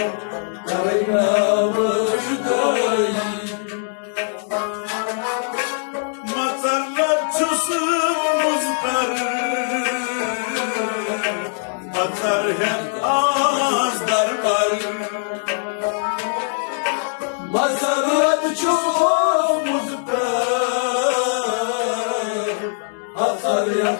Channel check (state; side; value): silent; right; 61 dB below the other